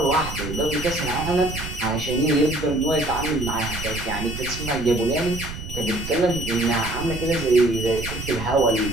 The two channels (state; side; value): noise; right; rumble, 9 dB below the sound